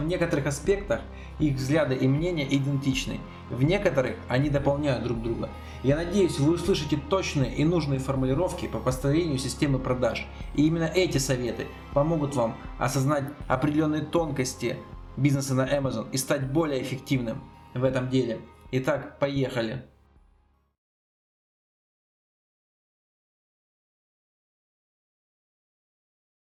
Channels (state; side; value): identical; both; correlation 1.00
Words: некоторых аспектах их взгляды и мнения идентичны, в некоторых они дополняют друг друга. Я надеюсь, вы услышите точные и нужные формулировки по построению системы продаж. И именно эти советы помогут вам осознать определенные тонкости бизнеса на Amazon и стать более эффективным в этом деле. Итак, поехали!